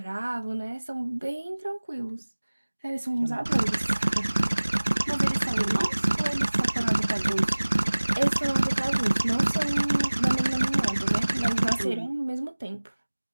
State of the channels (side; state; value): both; inverted; correlation -1.00